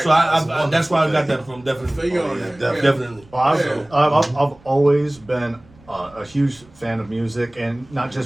So I that's where I got that from, definitely. Definitely. Well, I've always been a huge fan of music, and not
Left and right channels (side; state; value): right; noise; rumble, 27 dB below the sound